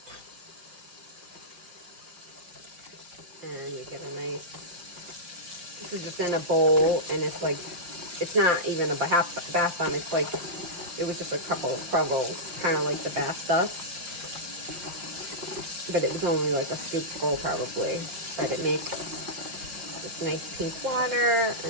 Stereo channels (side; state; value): left; late; 5.7 ms